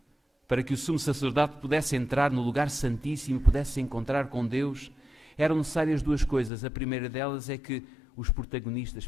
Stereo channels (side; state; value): right; drops out; at 6.5 s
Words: para que o sumo sacerdote pudesse entrar no lugar santíssimo e pudesse se encontrar com Deus, eram necessárias duas coisas. A primeira delas é que os protagonistas